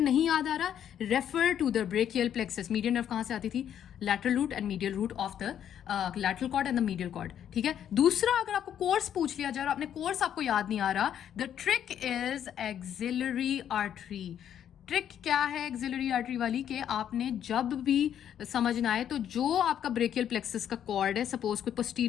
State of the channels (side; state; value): right; quieter; 9.7 dB